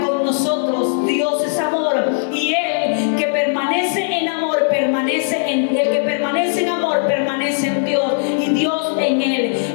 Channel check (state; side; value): silent; right; digital silence